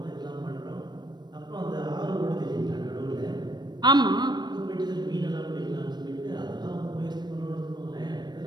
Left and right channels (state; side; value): late; left; 0.21 ms